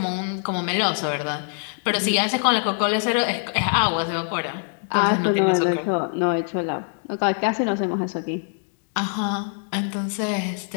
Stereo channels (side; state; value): right; silent; digital silence